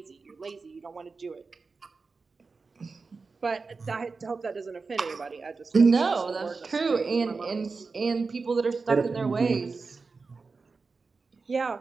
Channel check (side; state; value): left; quieter; 4.4 dB